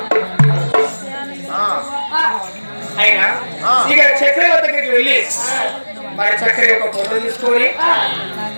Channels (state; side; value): inverted; both; correlation -1.00